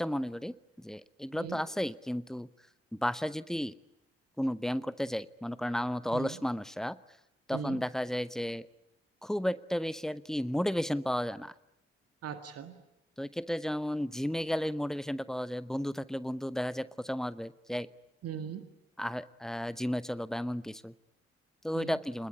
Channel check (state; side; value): normal; both; correlation 0.96